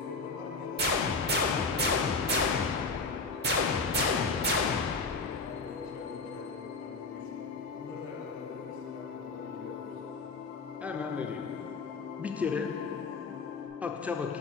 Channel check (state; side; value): quieter; right; 3.9 dB